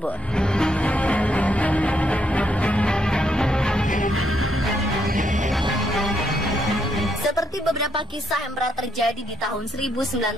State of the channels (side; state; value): both; normal; correlation 0.75